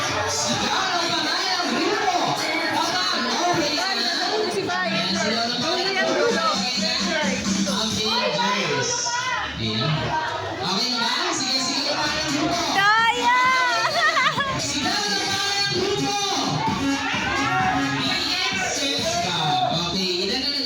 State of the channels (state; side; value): identical; both; correlation 1.00